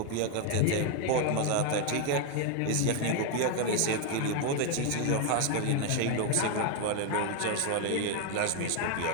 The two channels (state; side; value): different; both; correlation 0.01